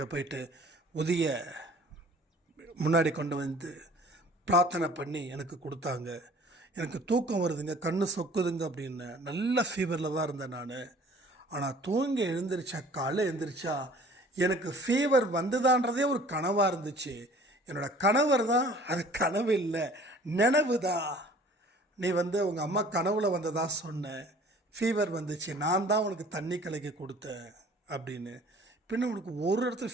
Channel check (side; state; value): both; normal; correlation 0.50